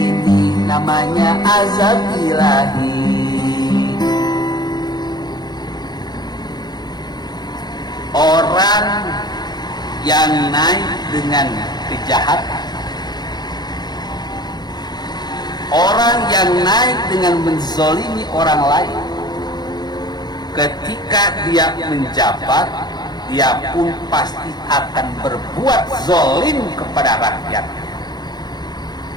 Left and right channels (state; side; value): late; right; 0.20 ms